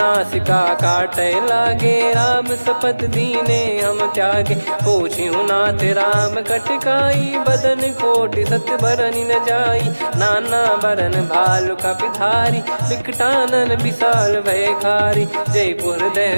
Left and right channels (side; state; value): both; inverted; correlation -1.00